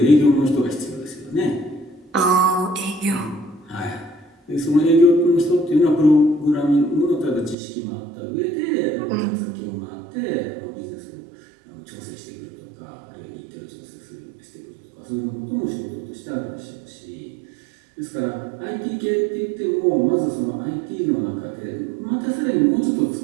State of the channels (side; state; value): left; drops out; at 7.6 s